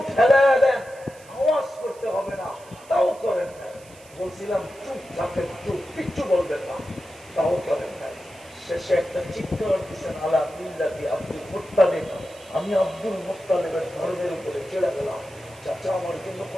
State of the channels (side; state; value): right; noise; hiss, 24 dB below the sound